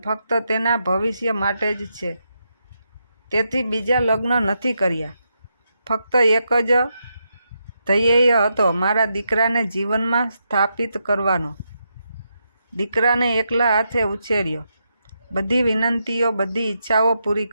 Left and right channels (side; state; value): both; inverted; correlation -0.83